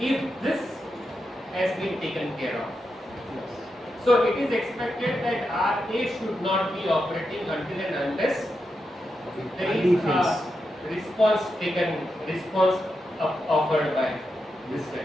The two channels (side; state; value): both; normal; correlation 0.87